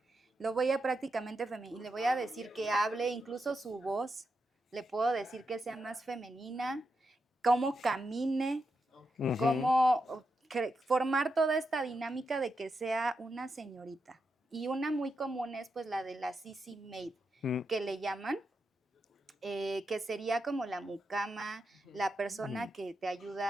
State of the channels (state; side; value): normal; both; correlation 0.86